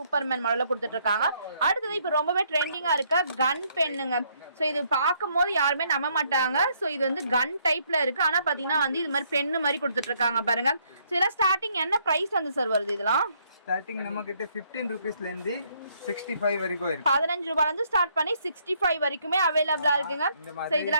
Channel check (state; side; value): inverted; both; correlation -0.69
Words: மாடல்ல கொடுத்துட்டு இருக்காங்க அடுத்தது இப்போ ரொம்பவே ட்ரெண்டிங்கா இருக்க கன் பென்னுங்க ஸோ இது பார்க்கும்போது யாருமே நம்ப மாட்டாங்க ஸோ இது வந்து கன் டைப்ல இருக்கு ஆனா பாத்தீங்கன்னா வந்து இது மாதிரி பென்னு மாதிரி கொடுத்துட்டு இருக்காங்க பாருங்க ஸோ இதெல்லாம் ஸ்டார்டிங் என்ன பிரைஸ் வந்து சார் வருது இதெல்லாம் ஸ்டார்டிங் நம்ம கிட்ட 15 ரூபீஸ்ல இருந்து 65 வரைக்கும் இருக்கு 15 ரூபாயில இருந்து ஸ்டார்ட் பண்ணி 65 வரைக்குமே அவைலபிளா இருக்குங்க சோ